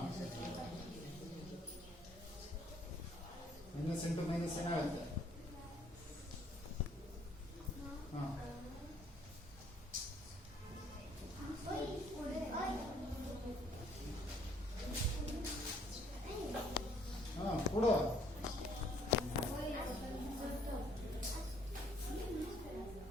ಮೈನಸ್ ಇಂಟು ಮೈನಸ್ ಏನಾಗುತ್ತೆ? ಹಾಂ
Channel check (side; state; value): both; normal; correlation 0.63